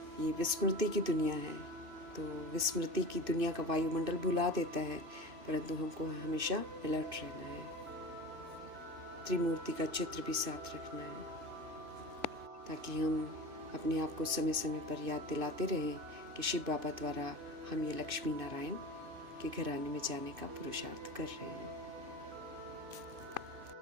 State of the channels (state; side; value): late; left; 3.0 ms